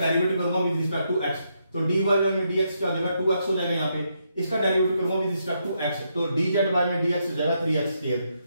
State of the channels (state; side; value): inverted; both; correlation -0.79